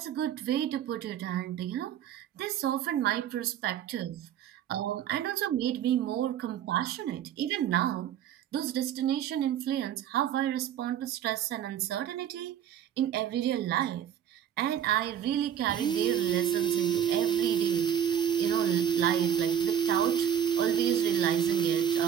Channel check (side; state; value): left; quieter; 9.5 dB